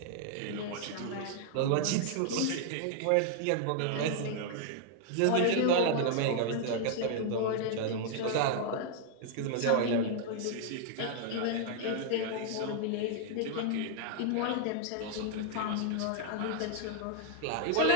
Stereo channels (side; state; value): both; different; correlation -0.01